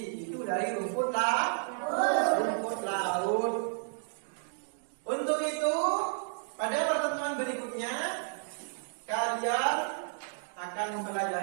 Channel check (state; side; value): silent; left; digital silence